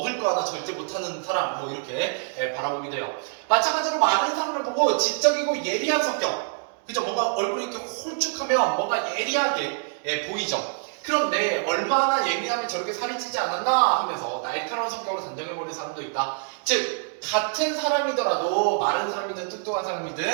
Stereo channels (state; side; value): silent; left; 61 dB below the other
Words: 거 하나 절제 못하는 사람, 뭐 이렇게 바라보기도 해요. 마찬가지로 많은 사람을 보고 지적이고 예리한 성격. 그죠? 뭔가 얼굴이 이렇게 홀쭉하면 뭔가 예리하게 보이죠? 그런데 얼마나 예민하면 저렇게 살이 찌지 않았나 하면서 날카로운 성격으로 단정해버리는 사람도 있다. 즉, 같은 사람이더라도 마른 사람이든 뚱뚱한